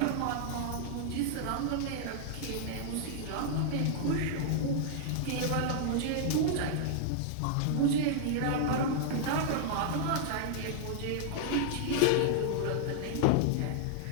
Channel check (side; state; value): both; different; correlation -0.01